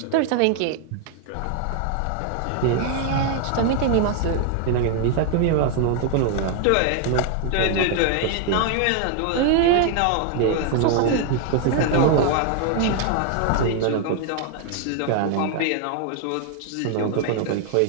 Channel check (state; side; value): different; both; correlation 0.00